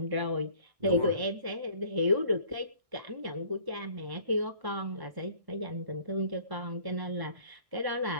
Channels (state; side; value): late; left; 1.6 ms